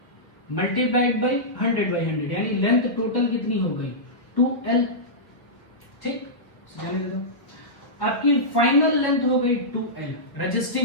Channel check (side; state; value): right; late; 1.4 ms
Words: मल्टीप्लाइड बाई 100 बाई 100, यानी लेंथ टोटल कितनी हो गई 2L। ठीक, जाने दे दो। आपकी फाइनल लेंथ हो गई 2L।